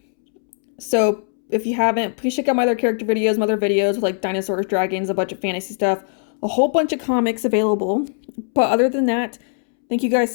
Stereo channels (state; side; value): silent; right; 66 dB below the other